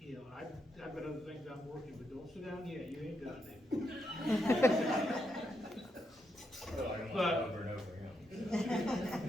know, I've got other things I'm working with, don't sit down yet, you ain't got anything. well, I don't But- want over and over, you know.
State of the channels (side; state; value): both; normal; correlation 0.81